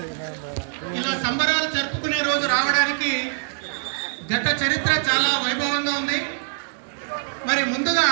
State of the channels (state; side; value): silent; left; digital silence